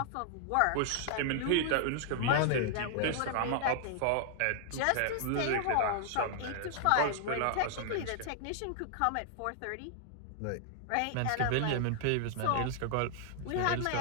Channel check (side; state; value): both; different; correlation 0.00